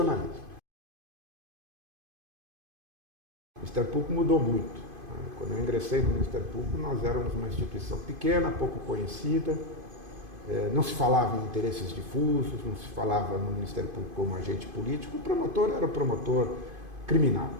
O Ministério Público mudou muito. Quando eu ingressei no Ministério Público, nós éramos uma instituição pequena, pouco conhecida, não se falava em interesses difusos, não se falava no Ministério Público como agente político, o promotor era o promotor criminal.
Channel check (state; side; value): late; left; 2.5 ms